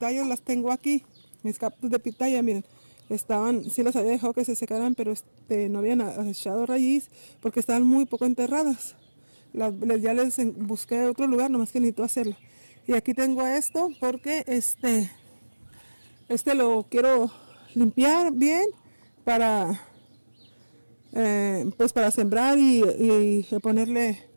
las tengo aquí, mis cactus de pitaya, miren, sí las había dejado que se secaran, pero no habían echado raíz porque estaban muy poco enterradas. Ya les busqué otro lugar, nomás que necesito hacerlo. Y aquí tengo esto porque lo quiero limpiar bien para pues para sembrar y ponerle,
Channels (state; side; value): inverted; both; correlation -1.00